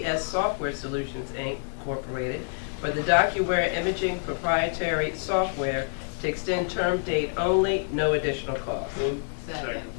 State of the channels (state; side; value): silent; right; digital silence